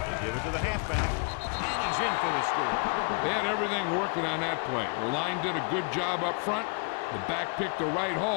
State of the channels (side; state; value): right; quieter; 36.8 dB